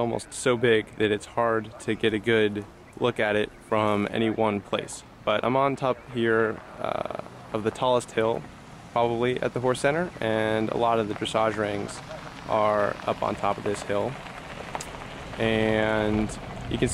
so big that it's hard to get a good look at it from any one place. But I'm on top here of the tallest hill probably at the Horse Center, and a lot of the dressage rings are up on top of this hill. And you can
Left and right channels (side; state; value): both; identical; correlation 1.00